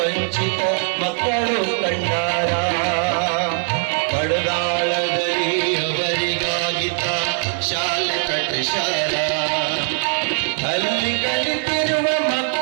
ಮಕ್ಕಳು ಕಂಡಾರ, ಬಡದಾಳದಲ್ಲಿ ಅವರಿಗಾಗಿತ ಶಾಲೆ ಕಟ್ಟಿಸಾರ. ಅಲ್ಲಿ ಕಲಿತಿರುವ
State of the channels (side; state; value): left; silent; 65 dB below the other